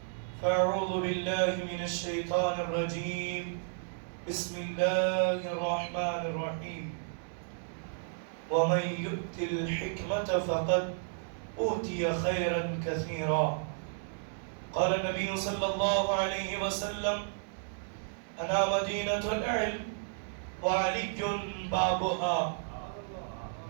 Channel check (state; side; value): silent; left; digital silence